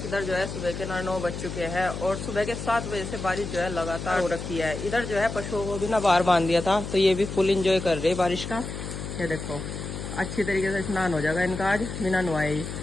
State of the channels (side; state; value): left; noise; hum, 7 dB below the sound